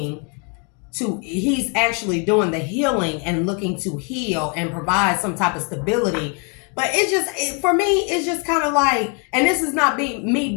he's actually doing the healing and looking to heal and provide some type of stability. But for me, it's just kind of like, and this is not me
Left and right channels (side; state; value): right; quieter; 36.6 dB